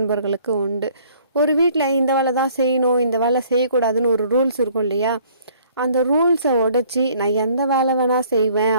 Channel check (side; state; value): both; inverted; correlation -0.58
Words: உண்டு. ஒரு வீட்டில் இந்த வேலை தான் செய்யணும், இந்த வேலை செய்யக்கூடாதுன்னு ஒரு ரூல்ஸ் இருக்கும் இல்லையா? அந்த ரூல்ஸை உடைச்சி நான் எந்த வேலை வேணால் செய்வேன்